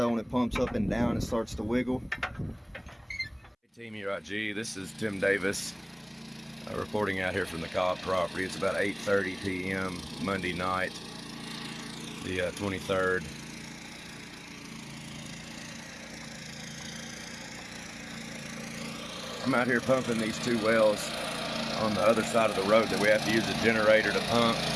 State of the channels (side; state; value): both; identical; correlation 1.00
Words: when it pumps up and down, it starts to wiggle. Hey Team K.I.N.G, this is Tim Davis reporting out here from the Cobb property. It's about 8:30 p.m. Monday night, the 23rd. I'm out here pumping these 2 wells on the other side of the road that we have to use a generator to pump.